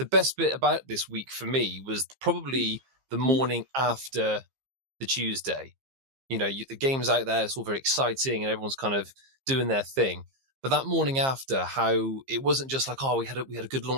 best bit about this week for me was probably the morning after the Tuesday. You know, the game's out there, it's all very exciting, and everyone's kind of doing their thing. But that morning after, how it wasn't just like, oh, we had a good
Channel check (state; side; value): late; left; 15 ms